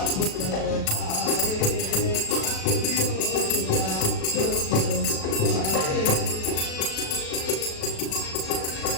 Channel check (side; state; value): right; late; 37 ms